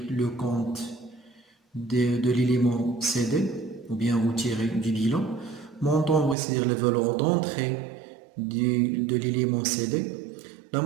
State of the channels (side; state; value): left; drops out; at 6.4 s